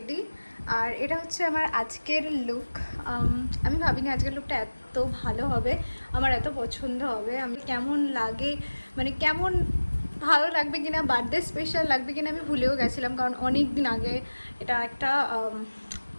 আর এটা হচ্ছে আমার আজকের লুক। আমি ভাবিনি আজকের লুকটা এত ভালো হবে, আমার এত পছন্দ হবে। আমি কেমন লাগে, মানে কেমন ভালো লাগবে কিনা, বার্থডে স্পেশাল লাগবে কিনা আমি ভুলেও গেছিলাম, কারণ অনেক দিন আগে এটা একটা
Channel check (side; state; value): both; inverted; correlation -1.00